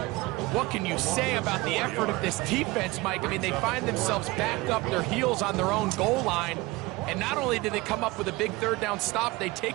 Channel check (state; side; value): quieter; left; 21.8 dB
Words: What can you say about the effort of this defense, Mike? I mean, they find themselves backed up their heels on their own goal line. And not only did they come up with a big third down stop, they take